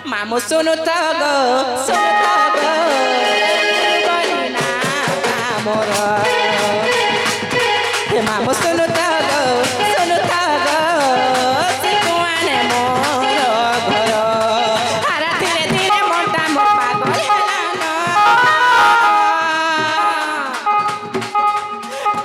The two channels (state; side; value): identical; both; correlation 1.00